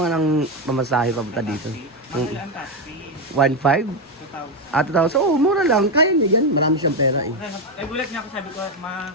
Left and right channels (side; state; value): both; normal; correlation 0.08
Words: ang mamasahe papunta dito. Mahal ang taxi. 1.5? 2,000. Ah, 2,000. Oo, mura lang. Kaya niya yan. Marami siyang pera eh. Eh, gulat niya ako, sabi ko,